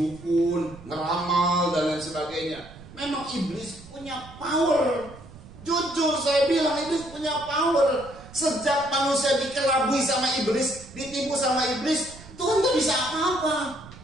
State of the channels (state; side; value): noise; right; rumble, 19 dB below the sound